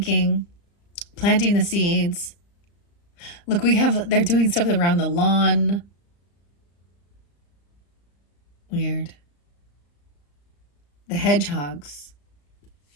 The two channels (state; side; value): late; right; 35 ms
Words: planting the seeds. Look, they're doing stuff around the lawn. Weird. The hedgehogs.